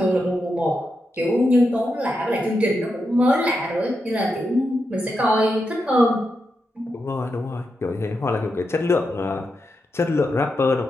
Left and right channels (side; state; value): both; normal; correlation 0.86